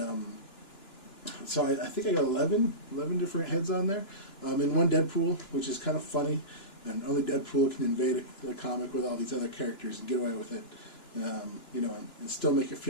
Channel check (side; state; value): right; late; 2.9 ms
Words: so I think I got 11 different heads on there, and one Deadpool, which is kind of funny. and only Deadpool can invade a comic with all these other characters and get away with it, you know, and still make it